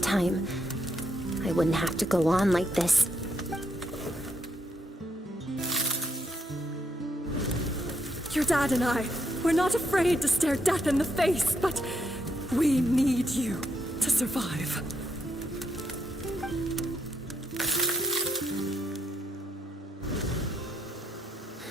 I wouldn't have to go on like this. Your dad and I, we're not afraid to stare death in the face, but we need you to survive.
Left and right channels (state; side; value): normal; both; correlation 0.78